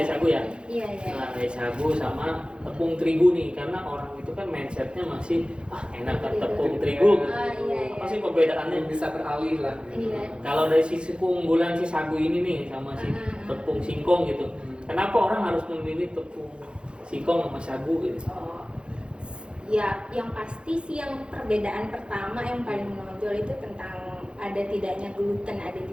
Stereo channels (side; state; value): left; late; 0.054 ms